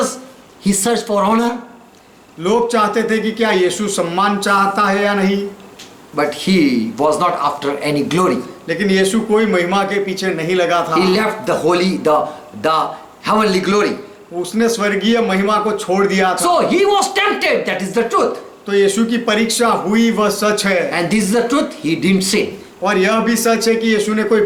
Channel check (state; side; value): identical; both; correlation 1.00